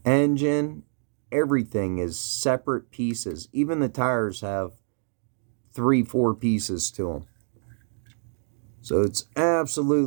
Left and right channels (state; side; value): silent; left; digital silence